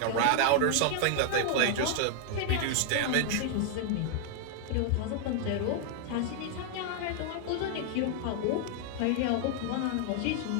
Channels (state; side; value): different; both; correlation 0.00